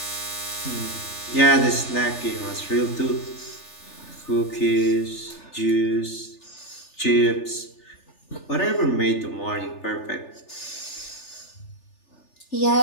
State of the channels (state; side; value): late; right; 3.4 ms